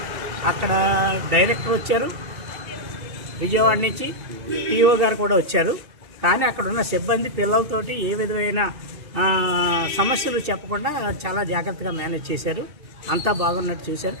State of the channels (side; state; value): left; late; 2.7 ms